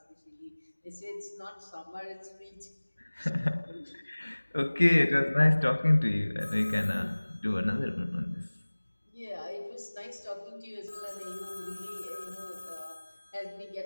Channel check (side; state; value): both; inverted; correlation -1.00